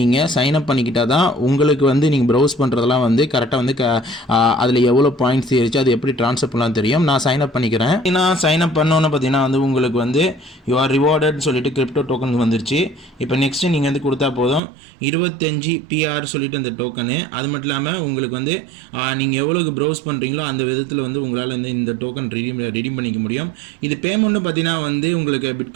தான் உங்களுக்கு வந்து நீங்கள் ப்ரௌஸ் பண்ணுறதெல்லாம் வந்து கரெக்டாக வந்து அதில் எவ்வளோ பாயிண்ட்ஸ் ஏறிச்சு அது எப்படி ட்ரான்ஸ்ஃபர் பண்ணலாம் தெரியும். நான் சைன் அப் பண்ணிக்கிறேன். நான் சைன் அப் பண்ணோன்னு பார்த்தீங்கன்னா வந்து உங்களுக்கு வந்து யூ ஆர் ரிவார்டட்னு சொல்லிட்டு கிரிப்டோ டோக்கன் வந்துருச்சு. இப்போ நெக்ஸ்ட்டு நீங்கள் வந்து கொடுத்தா போதும் 25 PR சொல்லிட்டு அந்த டோக்கனு. அது மட்டும் இல்லாமல் உங்களுக்கு வந்து நீங்கள் எவ்வளோக்கு ப்ரௌஸ் பண்ணுறீங்களோ அந்த விதத்தில் வந்து உங்களால் வந்து இந்த டோக்கன் ரெடீம் பண்ணிக்க முடியும். இது பேமெண்ட்னு பார்த்தீங்கன்னா வந்து உங்களுக்கு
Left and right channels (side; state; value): left; drops out; at 14.6 s